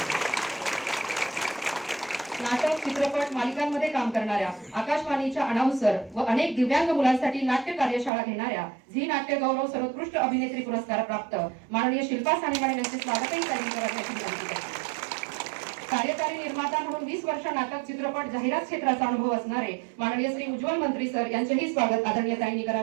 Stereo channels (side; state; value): left; drops out; at 8.1 s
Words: नाटक, चित्रपट मालिकांमध्ये काम करणाऱ्या, आकाशवाणीच्या अनाउन्सर व अनेक दिव्यांग मुलांसाठी नाट्य कार्यशाळा घेणाऱ्या, झी नाट्यगौरव सर्वोत्कृष्ट अभिनेत्री पुरस्कार प्राप्त माननीय शिल्पा साने मॅडम यांचे स्वागतही त्यांनी करावे. कार्यकारी निर्माता म्हणून 20 वर्ष नाटक, चित्रपट, जाहिरात क्षेत्राचा अनुभव असणारे माननीय श्री उज्ज्वल मंत्री सर यांचेही स्वागत आदरणीय ताईंनी